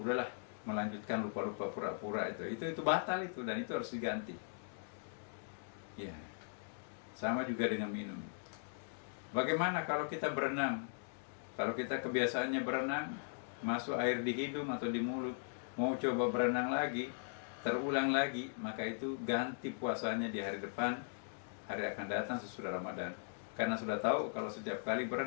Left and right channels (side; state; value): right; silent; digital silence